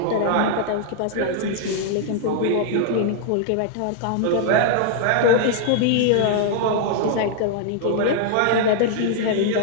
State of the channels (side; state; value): both; different; correlation -0.01